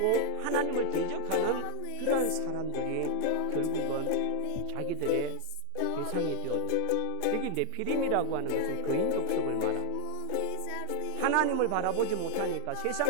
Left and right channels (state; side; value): different; both; correlation 0.00